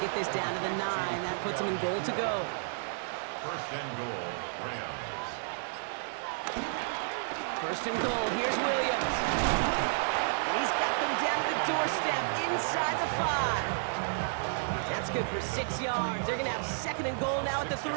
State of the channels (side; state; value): left; silent; digital silence